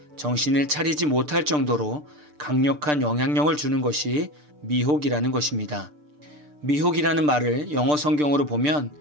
정신을 차리지 못할 정도로 강력한 영향력을 주는 것이 미혹이라는 것입니다. 미혹이라는 말을 영어 성경으로 보면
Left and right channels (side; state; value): left; late; 6.7 ms